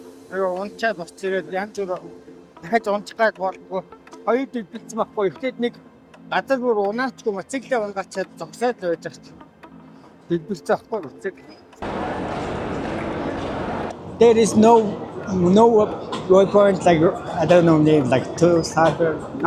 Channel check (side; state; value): both; identical; correlation 1.00